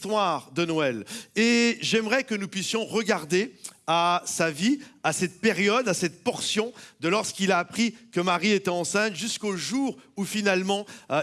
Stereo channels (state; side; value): identical; both; correlation 1.00